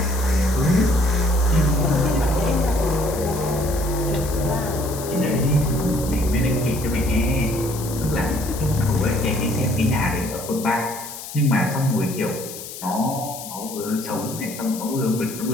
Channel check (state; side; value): noise; left; hiss, 11 dB below the sound